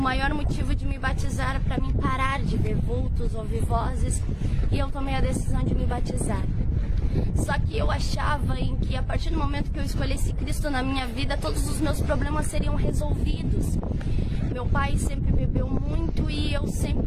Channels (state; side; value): identical; both; correlation 1.00